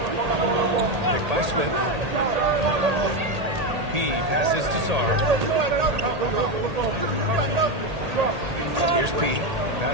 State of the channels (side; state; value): left; late; 1.8 ms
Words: Picked by Smith. P passes to Sarr. Here's P.